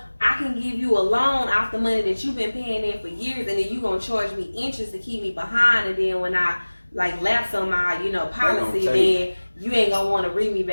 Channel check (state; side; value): inverted; both; correlation -1.00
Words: I can give you a loan off the money that you've been paying in for years, and then you going to charge me interest to keep me behind, and then when I like lapse on my, policy, then you ain't going to want to read me